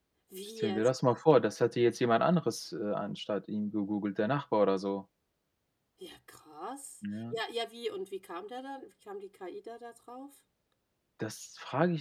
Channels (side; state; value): both; identical; correlation 1.00